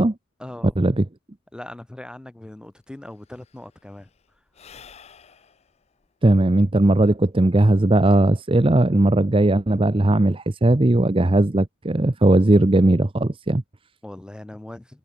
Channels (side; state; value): both; normal; correlation 0.86